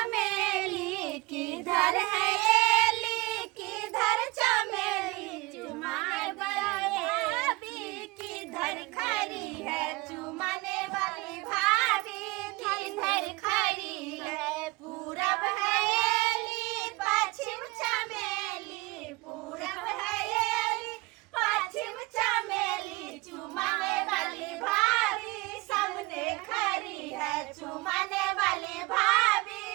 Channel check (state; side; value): quieter; left; 23.7 dB